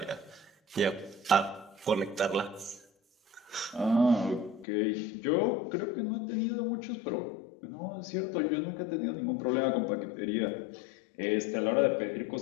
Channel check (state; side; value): drops out; right; at 4.7 s